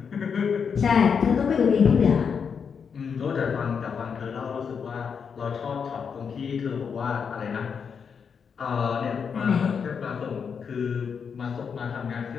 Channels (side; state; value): right; quieter; 6.4 dB